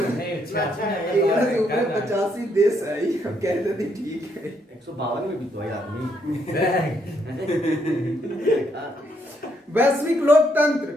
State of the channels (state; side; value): normal; both; correlation 0.74